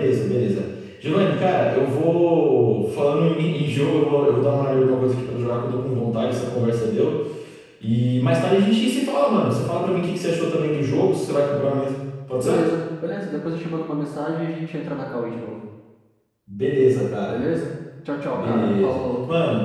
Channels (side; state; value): both; identical; correlation 1.00